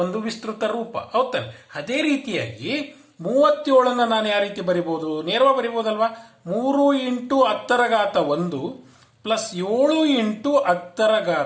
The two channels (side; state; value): both; identical; correlation 1.00